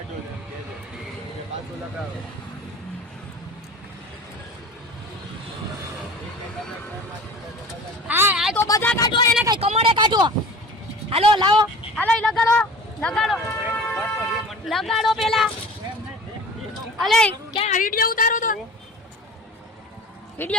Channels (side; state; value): both; normal; correlation 0.40